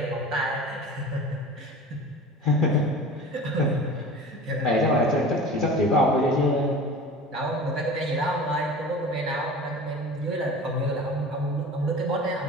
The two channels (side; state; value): both; normal; correlation 0.37